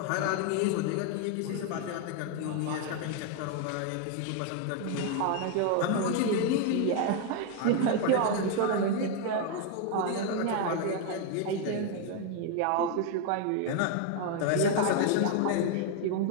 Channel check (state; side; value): different; both; correlation 0.01